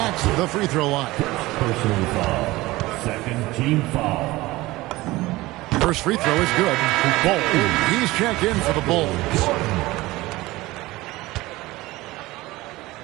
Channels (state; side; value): quieter; left; 19.3 dB